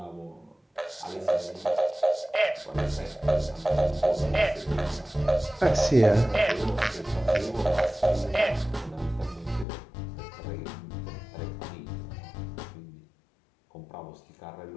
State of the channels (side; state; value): right; drops out; at 9.7 s